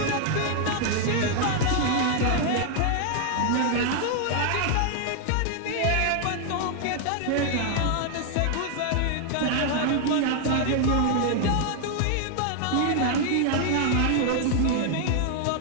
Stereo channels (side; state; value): both; different; correlation 0.00